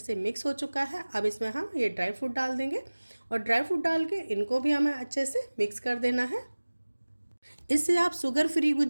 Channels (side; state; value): both; inverted; correlation -1.00